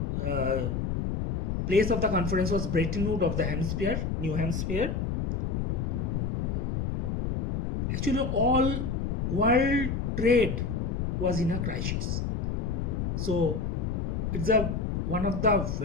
of the conference was Bretton Woods of the Hampshire, New Hampshire. Actually, all world trade was in a crisis. So it's one of the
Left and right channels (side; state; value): left; noise; rumble, 1 dB below the sound